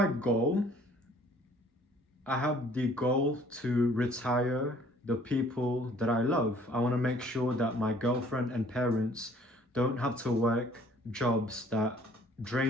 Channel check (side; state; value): both; normal; correlation 0.57